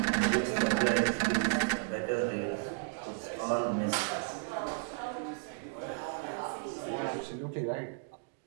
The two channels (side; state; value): left; silent; digital silence